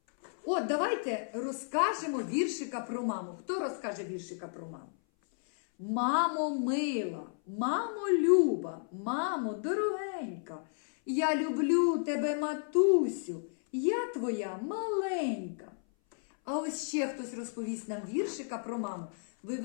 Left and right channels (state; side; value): silent; right; 56 dB below the other